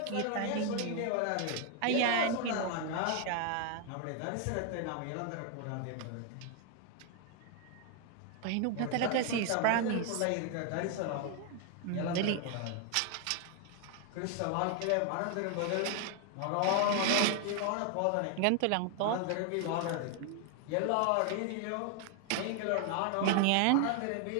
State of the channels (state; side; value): different; both; correlation 0.00